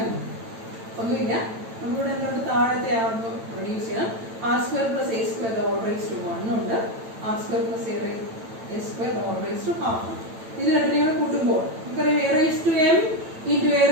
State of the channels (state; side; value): late; left; 9.0 ms